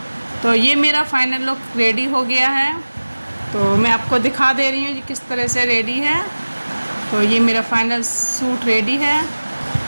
तो ये मेरा फाइनल लुक रेडी हो गया है। तो मैं आपको दिखा दे रही हूँ ये किस तरह से रेडी है। तो ये मेरा फाइनल सूट रेडी है।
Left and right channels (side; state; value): both; inverted; correlation -1.00